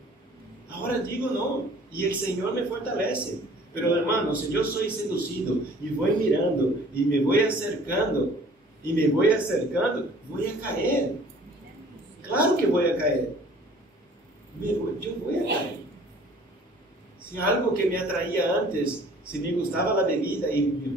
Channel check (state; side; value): normal; both; correlation 0.52